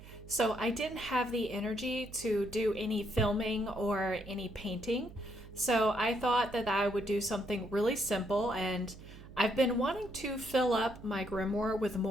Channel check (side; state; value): right; noise; hum, 17 dB below the sound